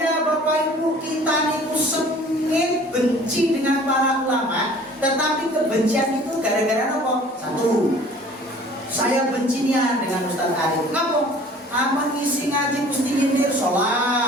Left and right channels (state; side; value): normal; both; correlation 0.49